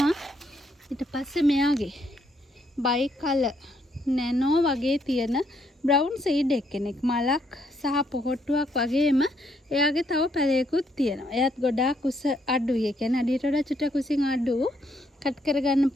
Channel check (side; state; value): both; normal; correlation 0.72